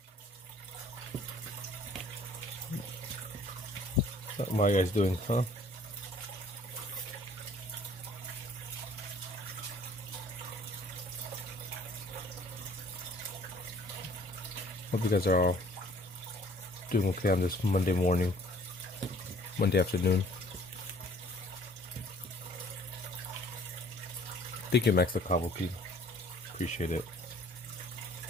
What are you guys doing, huh? Hope you guys are all doing okay on this Monday morning, Monday afternoon. Thank you, Max the Kabuki. Appreciate it.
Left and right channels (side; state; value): both; normal; correlation 0.56